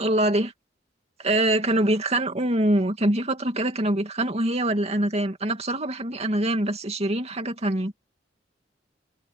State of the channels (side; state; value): both; normal; correlation 0.53